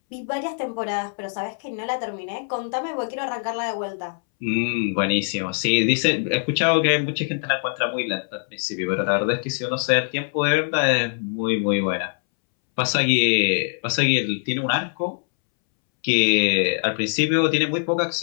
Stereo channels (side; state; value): right; silent; 63 dB below the other